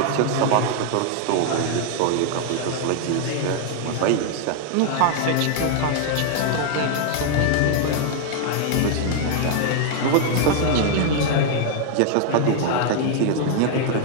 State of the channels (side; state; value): both; different; correlation 0.00